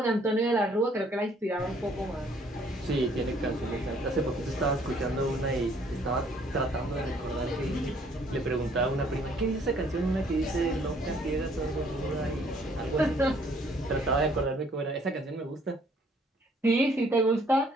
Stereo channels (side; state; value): both; normal; correlation 0.62